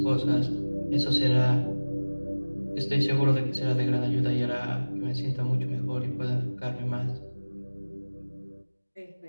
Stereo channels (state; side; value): inverted; both; correlation -1.00